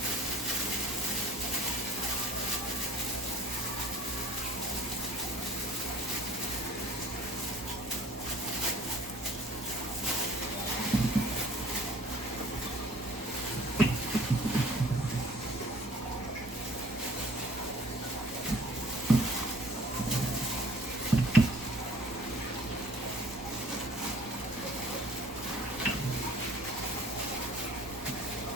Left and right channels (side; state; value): both; normal; correlation 0.51